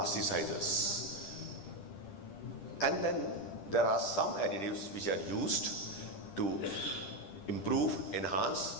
And then there are some additives which are used to improve,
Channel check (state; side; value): late; right; 10 ms